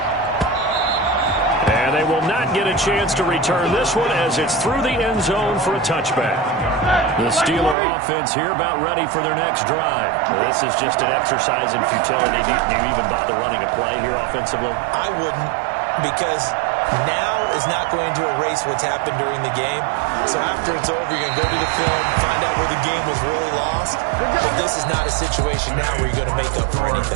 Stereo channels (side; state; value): left; drops out; at 7.8 s